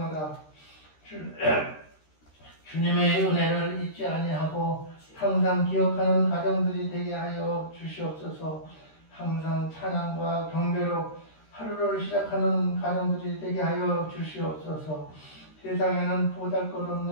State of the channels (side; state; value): right; late; 13 ms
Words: 주님의 은혜를 잊지 아니하고 항상 기억하는 가정들이 되게 하여 주시옵소서. 항상 찬양과 경배로 하루를 시작하는 가정들이 되게 하여 주시옵소서. 세상에는